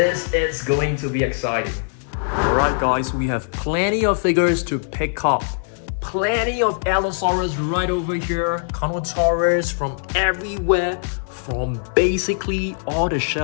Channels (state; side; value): silent; right; 64 dB below the other